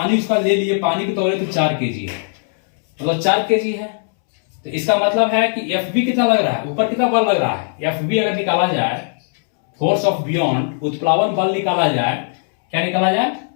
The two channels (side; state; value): right; silent; 67 dB below the other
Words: उसका ले लिए, पानी को तौले तो 4 केजी है, मतलब 4 केजी है। तो इसका मतलब है कि FV कितना लग रहा है? ऊपर कितना बल लग रहा है? FV अगर निकाला जाए, फोर्स ऑफ बियॉन्ड, उत्प्लावन बल निकाला जाए, क्या निकाला जाए?